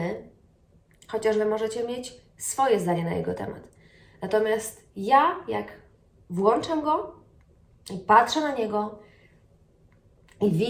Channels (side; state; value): both; identical; correlation 1.00